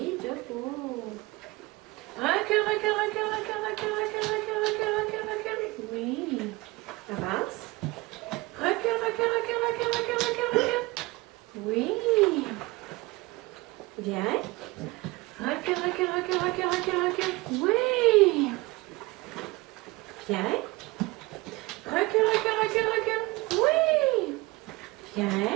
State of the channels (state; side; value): quieter; left; 22.3 dB